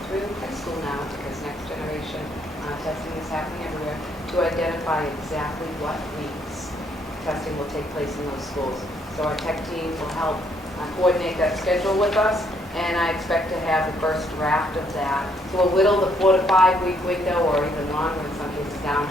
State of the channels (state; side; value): normal; both; correlation 0.70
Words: through high school now, because next generation testing is happening everywhere, to identify exactly what weeks testing will take place in those schools. So our tech team will help coordinate that schedule with us, and I expect to have the first draft of that. So we'll whittle the 4 to 5 week window, or even longer in some cases, down